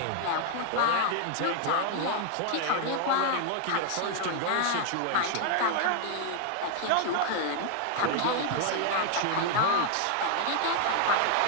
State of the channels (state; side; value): different; both; correlation 0.00